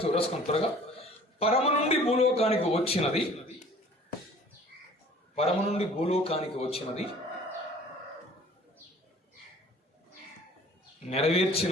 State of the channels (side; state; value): both; normal; correlation 0.49